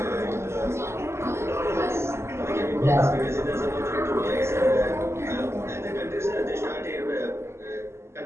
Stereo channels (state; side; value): late; left; 0.13 ms